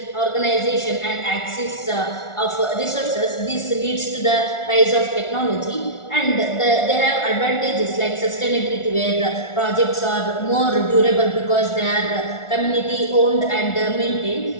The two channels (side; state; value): right; late; 1.4 ms